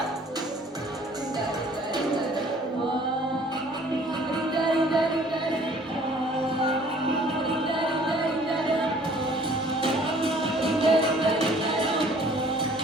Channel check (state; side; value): normal; both; correlation 0.55